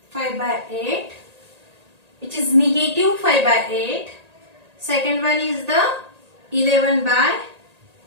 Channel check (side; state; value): left; late; 1.8 ms